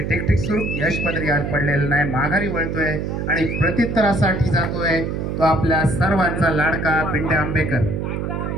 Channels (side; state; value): right; noise; hum, 3 dB below the sound